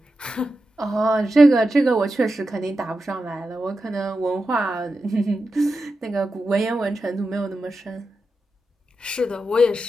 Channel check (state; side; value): normal; both; correlation 0.90